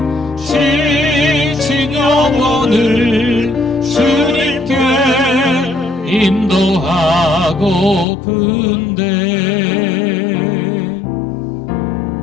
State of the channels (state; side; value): drops out; right; at 8.1 s